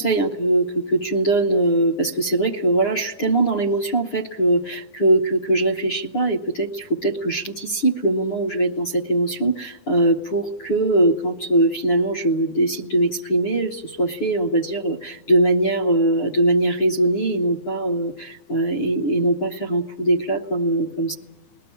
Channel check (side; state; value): right; late; 9.7 ms